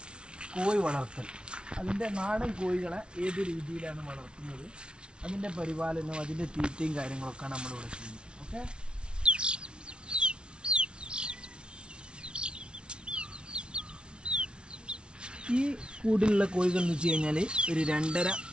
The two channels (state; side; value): late; left; 0.057 ms